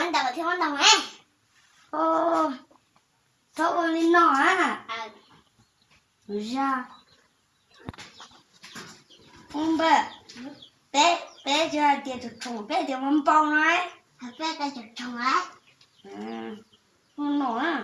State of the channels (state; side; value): identical; both; correlation 1.00